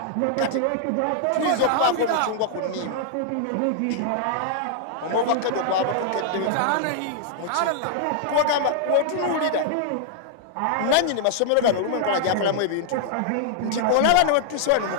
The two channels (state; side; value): different; both; correlation -0.01